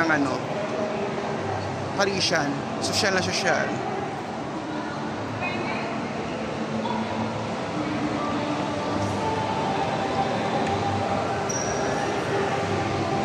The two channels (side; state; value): both; identical; correlation 1.00